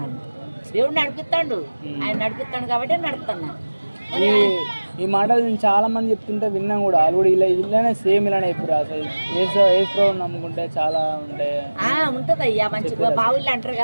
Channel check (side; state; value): both; inverted; correlation -1.00